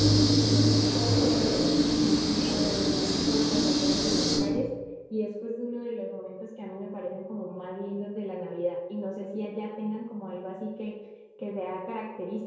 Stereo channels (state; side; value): identical; both; correlation 1.00